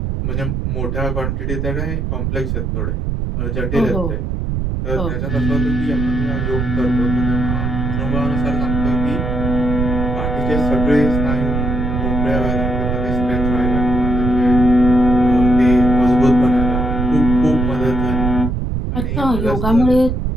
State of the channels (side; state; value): right; noise; rumble, 1 dB below the sound